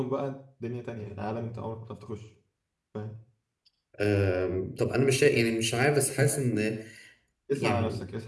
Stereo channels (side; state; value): both; identical; correlation 1.00